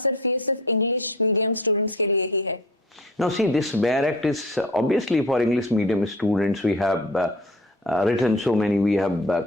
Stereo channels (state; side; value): normal; both; correlation 0.42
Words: इंग्लिश मीडियम स्टूडेंट्स के लिए ही है? Now see, this barrack is obviously for English medium students. We have written so many, we have